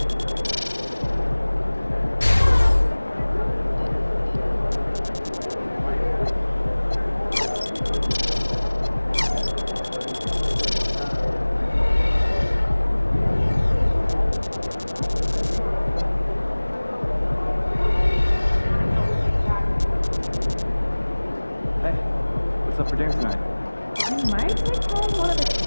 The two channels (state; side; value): inverted; both; correlation -1.00